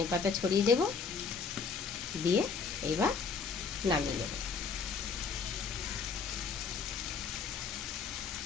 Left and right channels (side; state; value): right; quieter; 5.4 dB